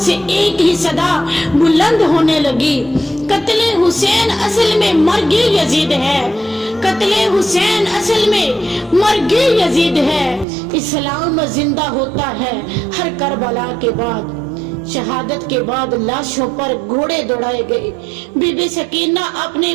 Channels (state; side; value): drops out; left; at 10.5 s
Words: سے ایک ہی صدا بلند ہونے لگی، قتل حسین اصل میں مرگ یزید ہے، قتل حسین اصل میں مرگ یزید ہے۔ اسلام زندہ ہوتا ہے ہر کربلا کے بعد۔ شہادت کے بعد لاشوں پر گھوڑے دوڑائے گئے۔ بی بی سکینہ اپنے